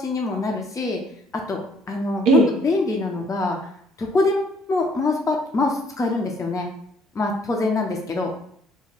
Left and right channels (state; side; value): normal; both; correlation 0.63